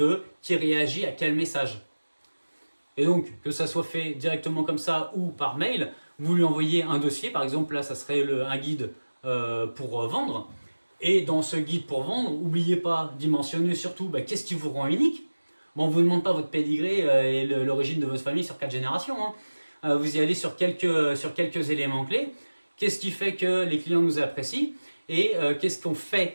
qui réagit à quel message. Et donc, que ça soit fait directement comme ça ou par mail, vous lui envoyez un dossier, par exemple là ça serait un guide pour vendre, et dans ce guide pour vendre, n'oubliez pas d'y mentionner surtout qu'est-ce qui vous rend unique. Bon, on ne vous demande pas votre pédigré et l'origine de votre famille sur 4 générations, vous y allez sur quelques éléments clés. Qu'est-ce qui fait que les clients nous apprécient et qu'est-ce qu'on fait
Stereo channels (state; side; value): inverted; both; correlation -1.00